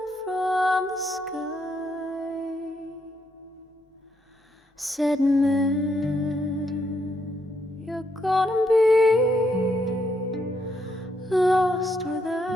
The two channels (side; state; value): both; normal; correlation 0.76